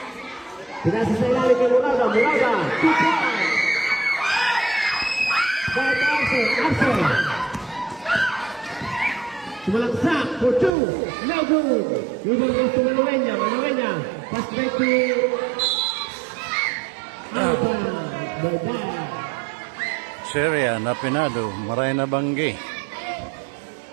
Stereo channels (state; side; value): drops out; left; at 10.8 s